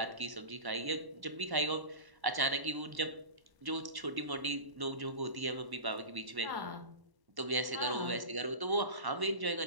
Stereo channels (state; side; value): late; left; 1.1 ms